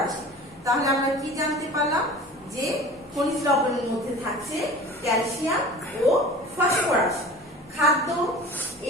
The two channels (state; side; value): normal; both; correlation 0.39